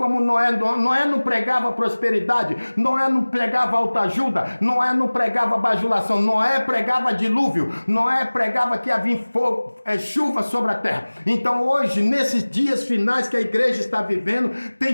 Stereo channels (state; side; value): inverted; both; correlation -1.00